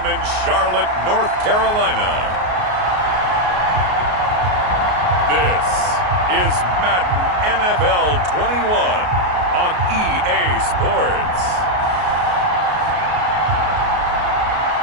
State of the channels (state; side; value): late; left; 33 ms